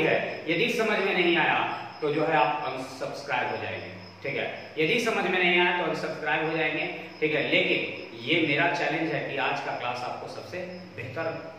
है। यदि समझ में नहीं आया तो जो है आप अनसब्सक्राइब हो जाएंगे, ठीक है। यदि समझ में नहीं आया तो अनसब्सक्राइब हो जाएंगे, ठीक है। लेकिन ये मेरा चैलेंज है कि आज का क्लास आपको सबसे बेहतर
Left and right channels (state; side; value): identical; both; correlation 1.00